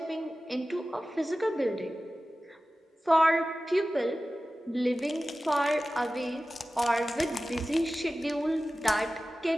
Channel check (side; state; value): both; normal; correlation 0.95